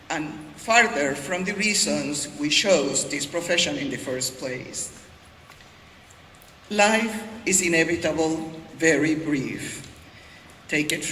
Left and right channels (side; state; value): both; identical; correlation 1.00